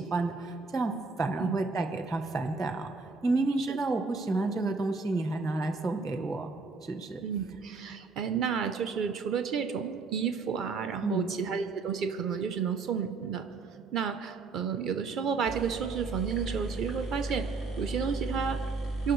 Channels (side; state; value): left; quieter; 4.3 dB